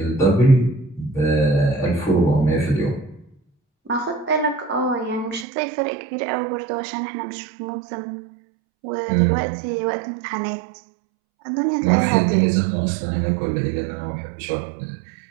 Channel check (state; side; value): drops out; left; at 5.5 s